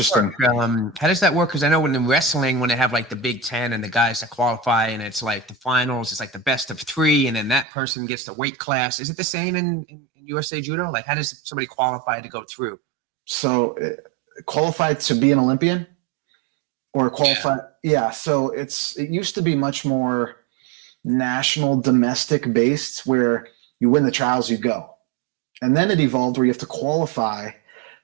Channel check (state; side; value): drops out; left; at 7.7 s